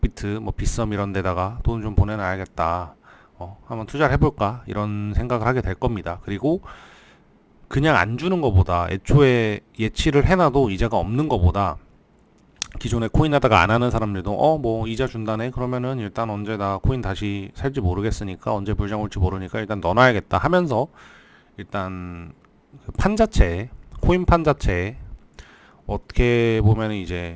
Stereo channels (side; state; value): both; identical; correlation 1.00